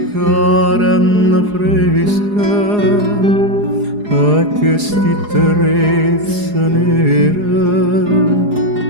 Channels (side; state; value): left; late; 4.8 ms